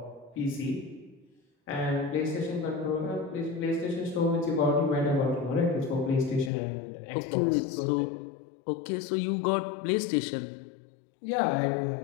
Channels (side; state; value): right; drops out; at 6.5 s